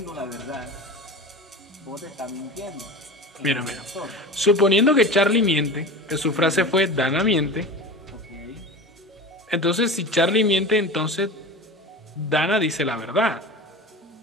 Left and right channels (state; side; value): normal; both; correlation 0.32